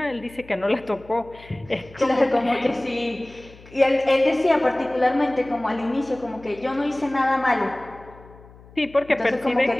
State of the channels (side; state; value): left; noise; hum, 22 dB below the sound